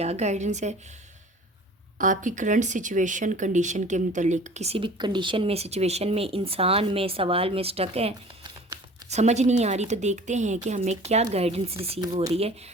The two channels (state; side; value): normal; both; correlation 0.45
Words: गाइडेंस है आपकी करंट सिचुएशन कंडीशन के मतलब। किसी भी कंडीशन में, सिचुएशन में, इंसान में, सवाल में स्टक है, समझ नहीं आ रही, तो देखते हैं कि हमें क्या गाइडेंस रिसीव हो रही है।